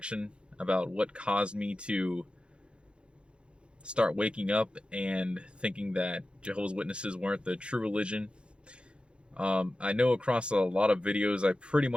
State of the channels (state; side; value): late; left; 0.056 ms